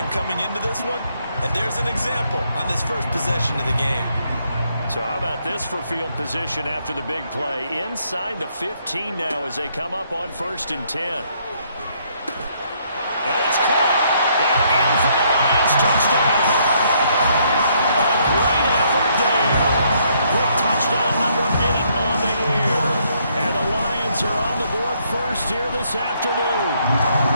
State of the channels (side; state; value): both; inverted; correlation -0.70